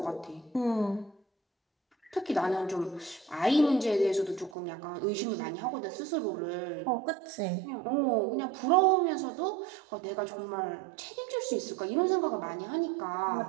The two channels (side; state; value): left; drops out; at 4.5 s